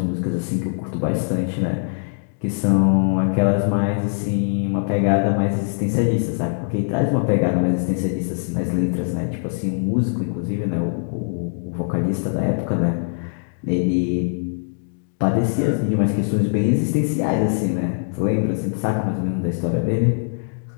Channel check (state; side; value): silent; right; digital silence